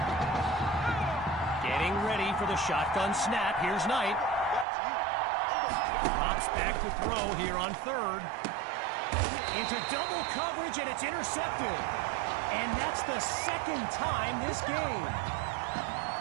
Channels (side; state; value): left; drops out; at 4.7 s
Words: Getting ready for the shotgun snap. Here's Knight. Drops back to throw here on third. Into double coverage, and it's intercepted. And that's the second time this game.